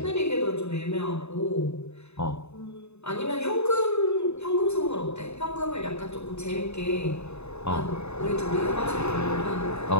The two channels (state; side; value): late; right; 0.80 ms